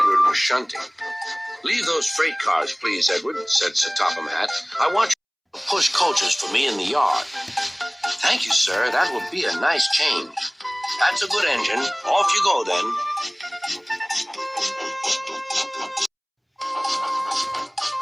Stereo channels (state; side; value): identical; both; correlation 1.00